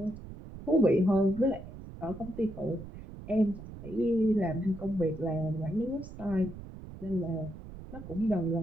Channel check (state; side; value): noise; right; rumble, 13 dB below the sound